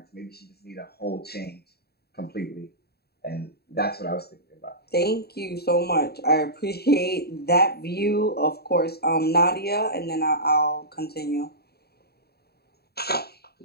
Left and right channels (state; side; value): late; right; 0.46 ms